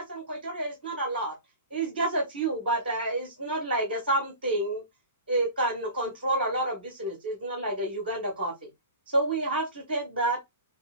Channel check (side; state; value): both; inverted; correlation -0.36